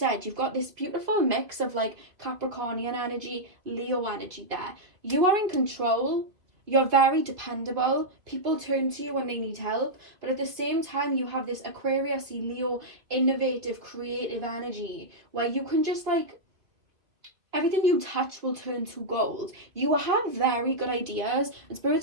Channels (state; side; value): late; left; 2.6 ms